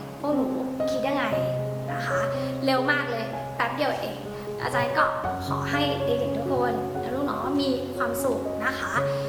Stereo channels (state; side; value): identical; both; correlation 1.00